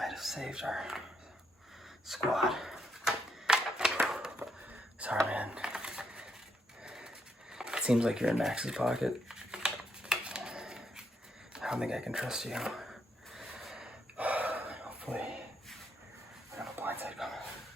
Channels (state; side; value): normal; both; correlation 0.77